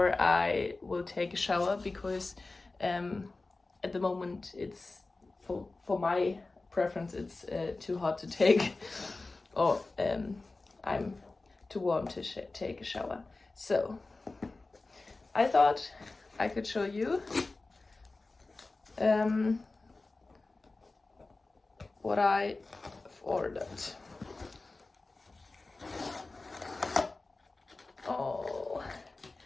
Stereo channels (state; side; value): quieter; right; 3.4 dB